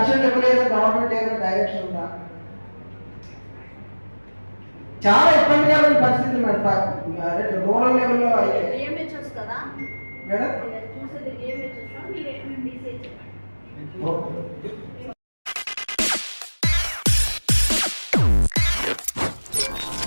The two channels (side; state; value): both; inverted; correlation -1.00